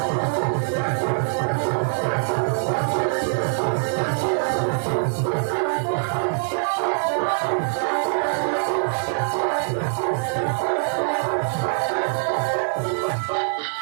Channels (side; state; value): left; silent; digital silence